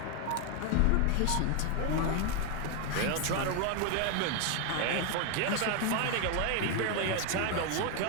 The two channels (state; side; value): different; both; correlation 0.01